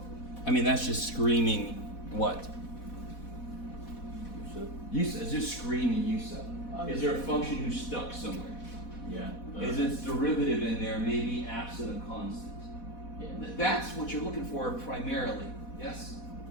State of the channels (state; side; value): late; right; 4.1 ms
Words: I mean, that's just screaming what? U sub. It's just screaming U sub. Is there a function who's stuck somewhere? Yeah. Is its derivative in there maybe absent a constant? Yeah. That's what you're looking for primarily, yes?